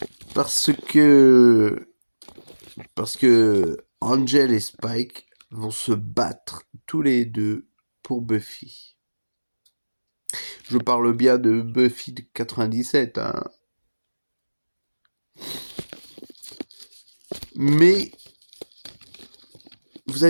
parce que Angel et Spike vont se battre tous les deux pour Buffy. Je parle bien de Buffy de 97, hein. Mais vous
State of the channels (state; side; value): inverted; both; correlation -1.00